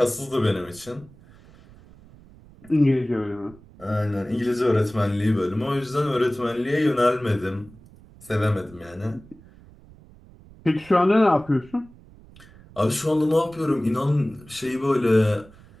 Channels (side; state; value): right; noise; rumble, 23 dB below the sound